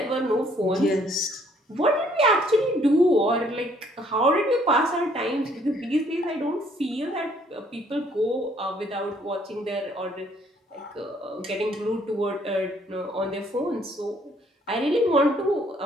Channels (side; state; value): both; normal; correlation 0.64